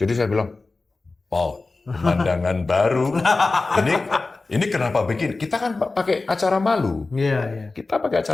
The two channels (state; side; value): quieter; right; 3.6 dB